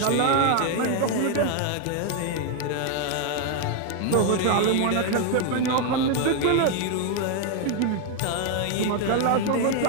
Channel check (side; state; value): both; different; correlation 0.00